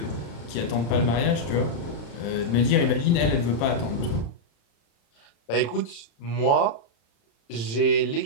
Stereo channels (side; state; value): right; late; 35 ms